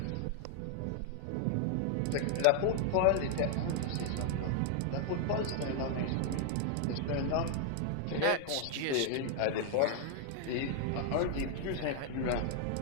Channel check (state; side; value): different; both; correlation 0.00